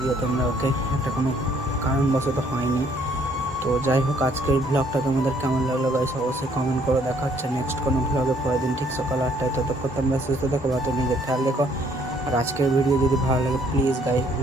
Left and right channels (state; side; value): normal; both; correlation 0.63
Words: দিও তোমরা। ওকে এটা কোনো কারণবশত হয়নি। তো যাই হোক, আজকের ব্লগটা তোমাদের কেমন লাগলো গাইস অবশ্যই কমেন্ট করে। দেখা হচ্ছে নেক্সট কোনো ব্লগে পরের দিন ঠিক সকাল 8টায়। ততক্ষণ তোমরা সুস্থ থাকো, ভালো নিজের খেয়াল রেখো। আর আজকের ভিডিও যদি ভালো লাগে please guys